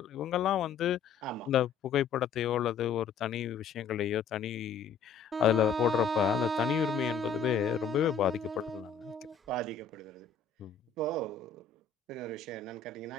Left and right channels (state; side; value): quieter; right; 6.1 dB